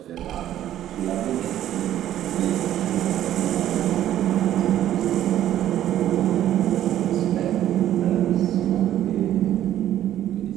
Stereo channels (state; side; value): quieter; left; 12.0 dB